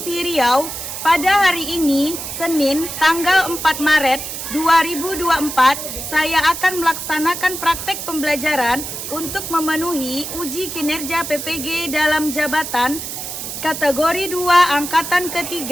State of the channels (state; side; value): noise; right; hiss, 7 dB below the sound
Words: Riau. Pada hari ini, Senin, tanggal 4 Maret 2024, saya akan melaksanakan praktek pembelajaran untuk memenuhi uji kinerja PPG dalam jabatan kategori 2 Angkatan